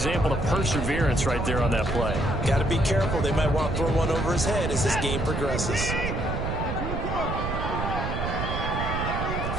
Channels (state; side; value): noise; right; rumble, 3 dB below the sound